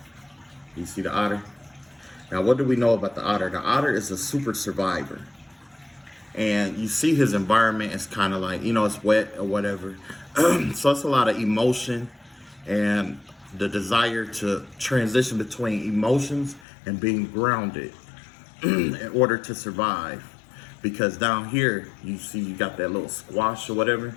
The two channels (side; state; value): right; drops out; at 16.6 s